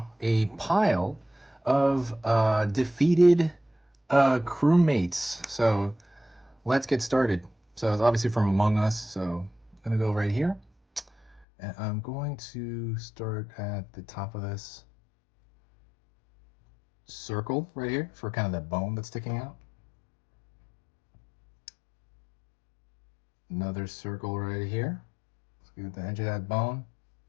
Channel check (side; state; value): right; drops out; at 11.5 s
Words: a pile of defeated crewmates. So let's get started. So it's obviously from Among Us. So I'm going to go right here. And I'm going to start at the top of this circle right here for kind of that bone that's sticking out. Another circle right here. Let's get the edge of that bone.